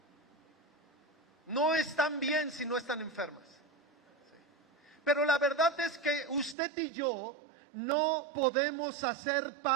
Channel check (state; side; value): drops out; left; at 6.6 s